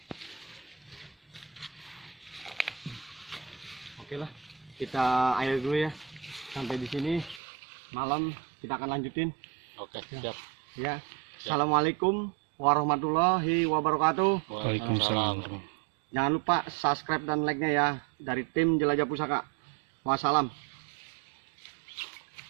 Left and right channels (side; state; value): left; drops out; at 7.4 s